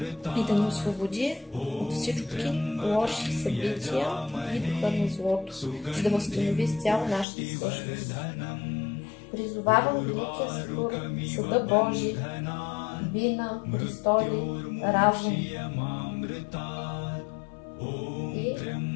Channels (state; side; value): drops out; right; at 7.2 s